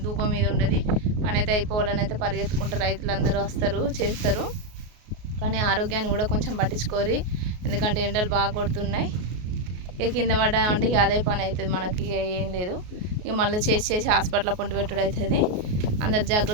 ధూపం మీద ఉండదు. పని అయితే అయిపోవాలని అయితే పరిగెత్తుకుంటారు. రైతులందరూ వస్తారు, చేస్తారు. కానీ ఆరోగ్యాన్ని కూడా కొంచెం పట్టించుకోరు. ఎందుకంటే ఎండలు బాగా కొడుతున్నాయి. ఇక కింద పడ్డామంటే ఇక అదే పని అవుతుంది మనకి. ఏం లేదు, ఇక మళ్ళీ చేసి హాస్పిటల్లో పొంటి పెట్టుడు అవుతుంది. అందరు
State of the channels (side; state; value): left; late; 33 ms